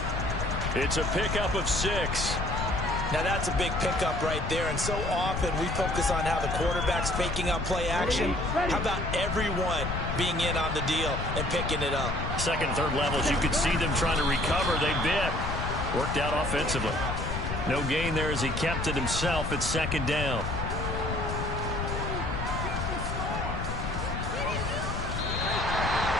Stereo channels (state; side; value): noise; left; rumble, 4 dB below the sound